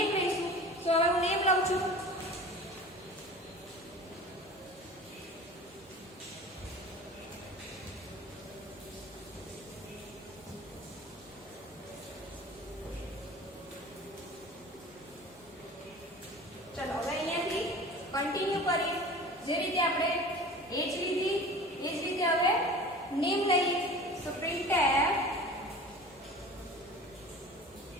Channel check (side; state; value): both; normal; correlation 0.39